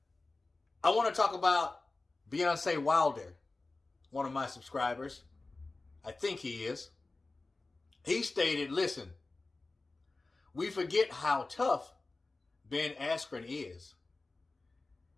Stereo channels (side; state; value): right; quieter; 3.4 dB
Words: I want to talk about Deontay Wilder, one of my subscribers. I think he is. He stated, listen, we forget how tough Ben Askren is.